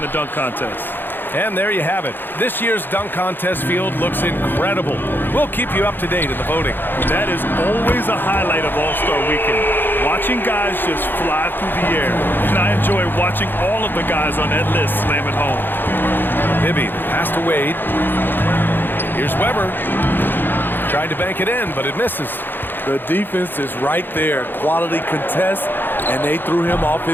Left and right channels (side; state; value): right; late; 0.096 ms